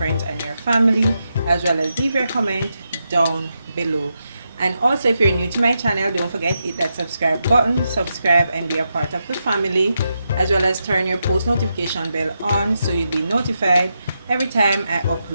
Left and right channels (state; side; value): inverted; both; correlation -0.85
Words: and your family, as well as leave your comment down below. And also, if you're new to my channel, don't forget to hit that subscribe button, subscribe and be a part of the family, as well as turn your post notification bell on so you'll be notified every time I